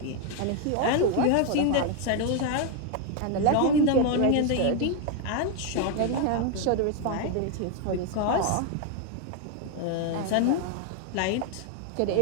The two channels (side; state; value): both; different; correlation 0.01